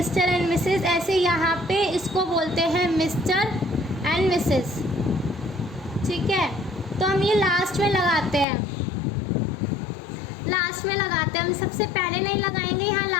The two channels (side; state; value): right; drops out; at 8.5 s